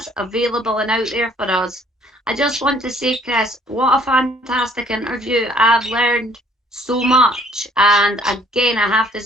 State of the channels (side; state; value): both; normal; correlation 0.60